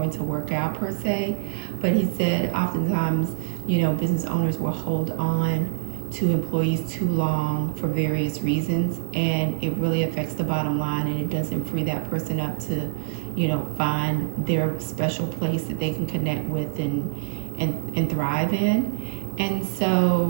to work out per se. But he said oftentimes, you know, business owners will hold on to employees too long for various reasons, and it really affects the bottom line, and it doesn't free that person up to, you know, find their special place that they can connect with and thrive in. And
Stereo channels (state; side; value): silent; left; digital silence